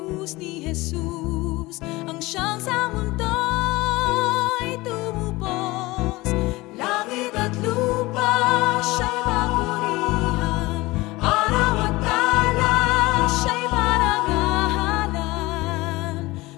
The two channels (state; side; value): quieter; right; 20.8 dB